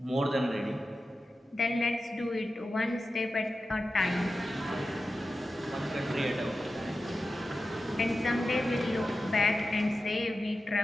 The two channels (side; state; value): both; normal; correlation 0.92